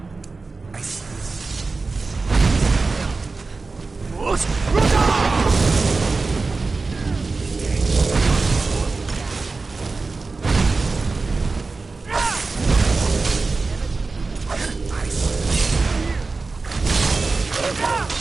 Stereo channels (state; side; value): quieter; left; 3.9 dB